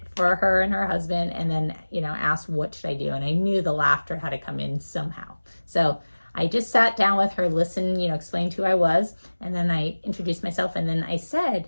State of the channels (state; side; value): inverted; both; correlation -1.00